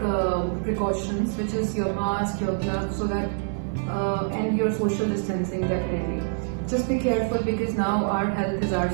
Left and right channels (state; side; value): silent; left; digital silence